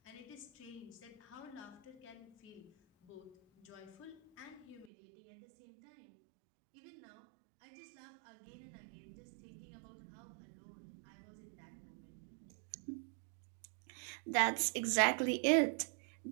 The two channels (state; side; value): drops out; left; at 4.9 s